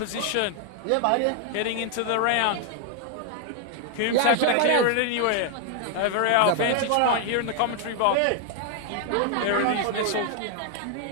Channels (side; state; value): both; different; correlation 0.00